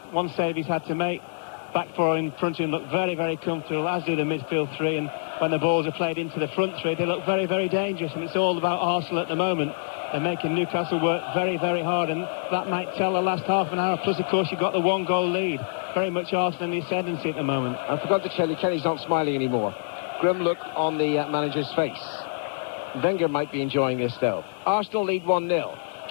One save he's had to make. Back four in front of him look very, very comfortable, as do the midfield three. And when the balls are played into the front three, they look very, very dangerous. And it's all about Arsenal at the moment. They're making Newcastle work very, very hard. And that might tell the last half an hour. Plus, of course, you've got the one-goal lead. Very much Arsenal in the ascendancy at the moment. I forgot to tell you, Kenny's not smiling anymore. Grim look on the manager's face. Wenger might be enjoying this, though. Arsenal lead 1-0.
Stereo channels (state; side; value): silent; right; digital silence